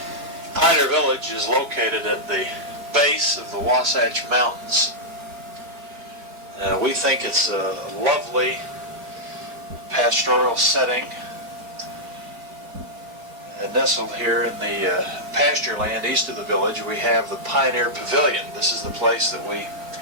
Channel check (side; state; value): left; late; 4.4 ms